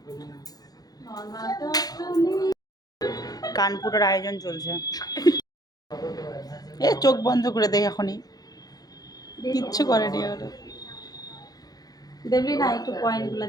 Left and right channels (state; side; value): late; right; 0.19 ms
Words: কান ফুটার আয়োজন চলছে। এ চোখ বন্ধ করে দেয় এখনই, কিচ্ছু করেনি ওরা। দেখবি না একটু পয়েন্ট গুলা